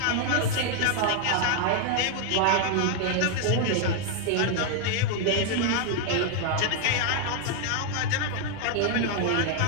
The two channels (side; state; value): both; different; correlation 0.00